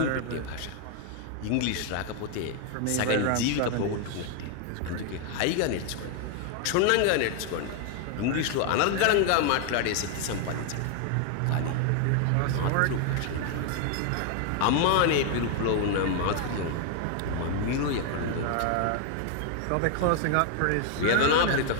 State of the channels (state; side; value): different; both; correlation 0.00